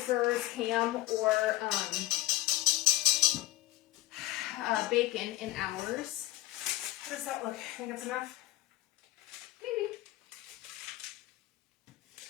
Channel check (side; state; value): right; quieter; 16.9 dB